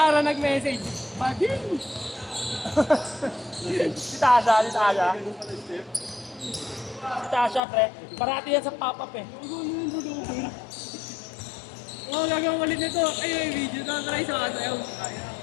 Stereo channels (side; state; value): right; drops out; at 7.6 s